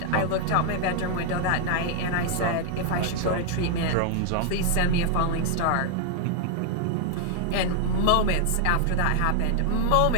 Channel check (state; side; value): different; both; correlation 0.00